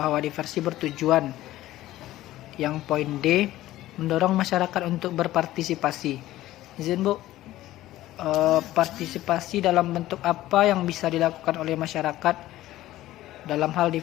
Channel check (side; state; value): right; quieter; 15.2 dB